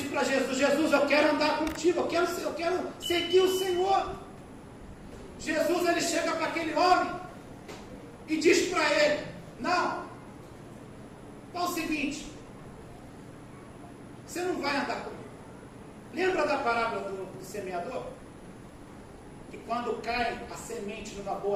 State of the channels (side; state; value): both; identical; correlation 1.00